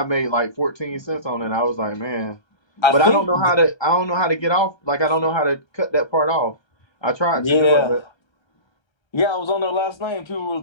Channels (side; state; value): right; late; 1.3 ms